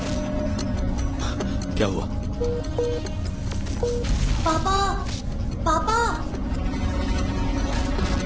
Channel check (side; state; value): both; identical; correlation 1.00